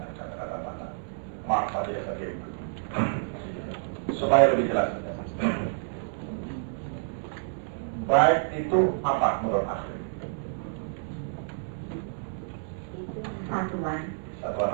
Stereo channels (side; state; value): left; silent; 59 dB below the other